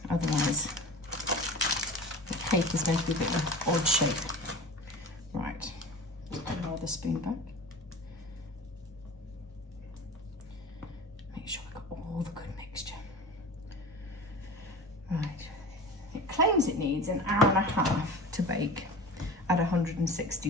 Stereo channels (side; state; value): both; normal; correlation 0.34